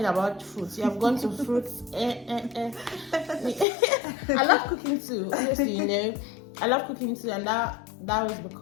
about fruits. You have gone to fruits. I love cooking too, honestly, I love cooking too, and that was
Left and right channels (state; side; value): drops out; right; at 3.7 s